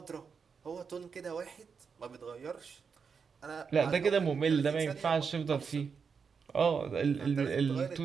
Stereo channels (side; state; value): left; quieter; 5.9 dB